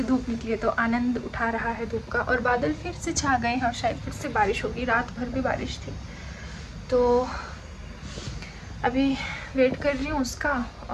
धूप निकली है तो आनंद उठा रहा है धूप का। और बादल फिर से छा गए हैं और शायद फिर से बारिश होगी, रात भर भी बारिश थी। तो अभी वेट कर रही हूँ उसका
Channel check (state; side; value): identical; both; correlation 1.00